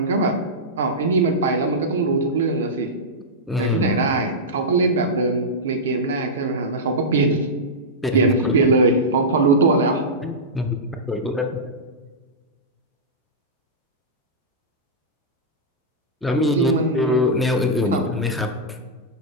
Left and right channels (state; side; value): normal; both; correlation -0.12